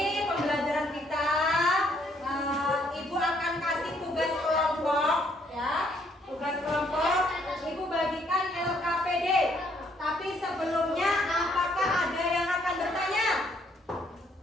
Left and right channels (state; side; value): normal; both; correlation 0.68